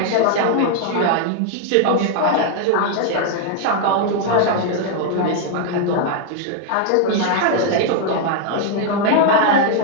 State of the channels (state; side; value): different; both; correlation 0.00